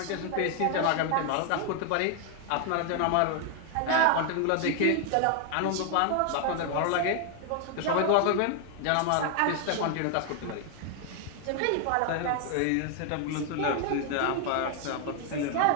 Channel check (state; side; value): different; both; correlation 0.00